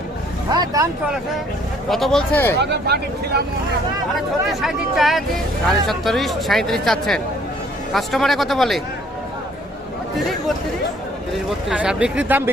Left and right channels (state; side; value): normal; both; correlation 0.61